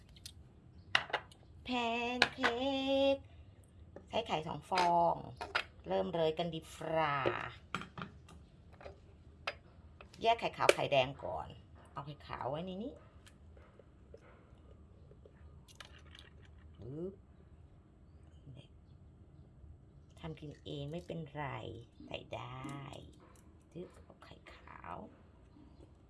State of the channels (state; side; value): identical; both; correlation 1.00